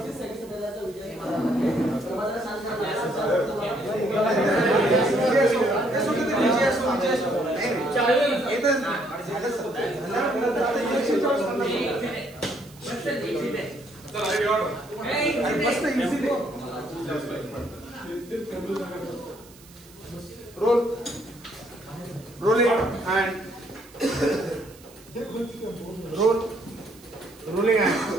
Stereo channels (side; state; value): right; noise; hiss, 24 dB below the sound